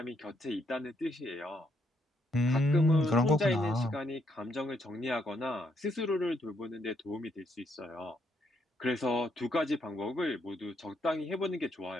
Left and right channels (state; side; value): normal; both; correlation 0.74